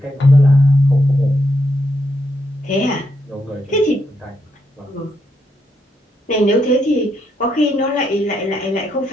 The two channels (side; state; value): both; normal; correlation 0.79